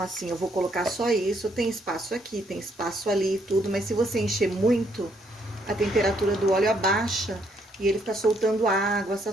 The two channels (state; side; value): normal; both; correlation 0.71